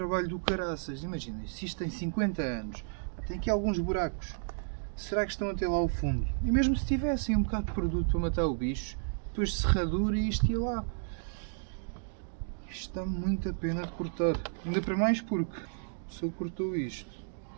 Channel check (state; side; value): silent; left; digital silence